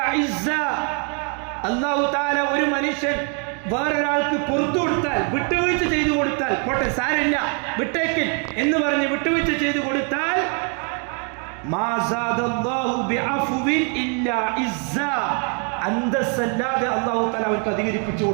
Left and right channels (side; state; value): left; quieter; 38.9 dB